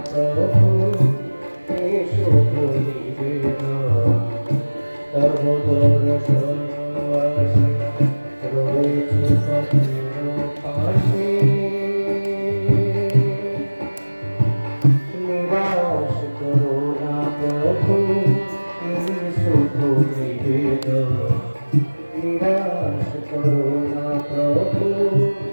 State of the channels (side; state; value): both; inverted; correlation -1.00